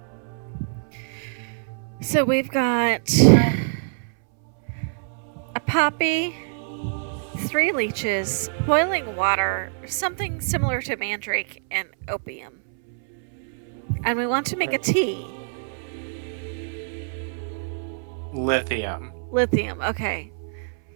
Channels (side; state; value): left; silent; 62 dB below the other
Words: So we've got a poppy, 3 leeches, boiling water, something similar to mandrake, and opium. And we want to make a tea. Lithium Lithium, okay.